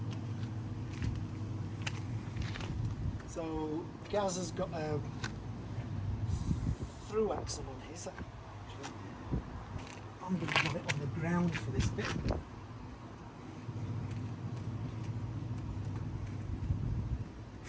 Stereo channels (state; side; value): identical; both; correlation 1.00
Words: Gaz has got a through axle on his. I'm going to put it on the ground for this bit.